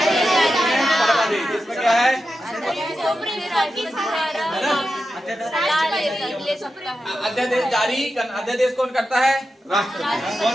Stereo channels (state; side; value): normal; both; correlation 0.90